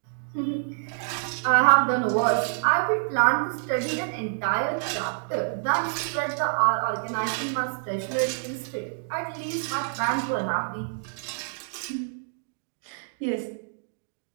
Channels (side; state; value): left; silent; digital silence